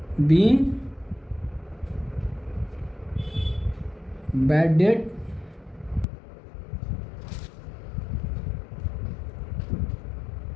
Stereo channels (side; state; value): right; drops out; at 6.1 s